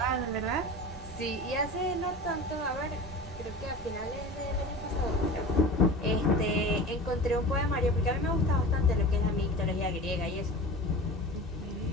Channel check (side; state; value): both; normal; correlation 0.34